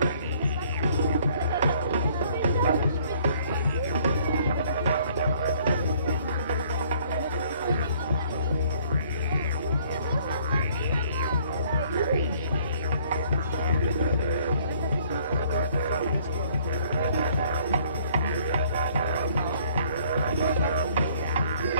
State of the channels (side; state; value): both; inverted; correlation -0.60